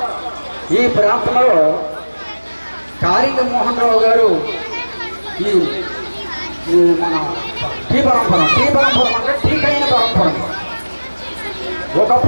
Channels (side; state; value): both; inverted; correlation -1.00